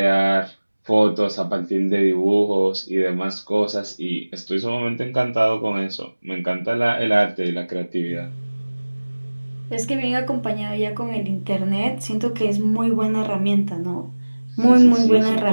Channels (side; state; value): both; inverted; correlation -1.00